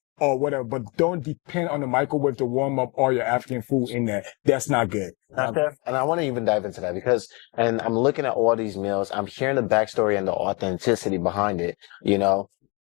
or whatever, but don't depend on the microwave to warm up all your African food in there. That's not good. And I want to even dive into that because, and I'm looking at all these meals, I'm hearing the backstory and the authenticity behind it. You know,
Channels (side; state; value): right; quieter; 29.8 dB